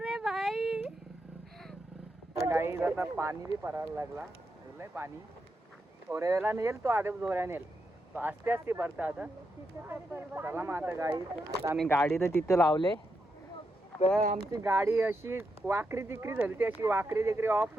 रे भाई. गाईज आता पाणी बी परायला लागला लय पाणी थोड्या वेळा नेल तो आधी जोऱ्या नेल तो आस्ते आस्ते भरता आता. चला मग आता गाई आता आम्ही गाडी तर तिथं लावले तर आमची गाडी अशी वाकरी तिकरी झाली ती अशी वाकरी तिकरी ऑफ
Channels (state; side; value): normal; both; correlation 0.84